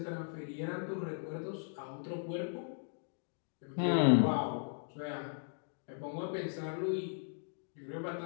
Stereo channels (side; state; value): right; silent; digital silence